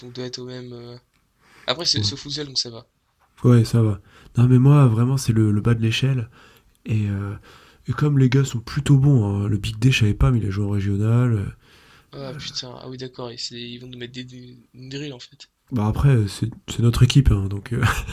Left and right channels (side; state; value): both; identical; correlation 1.00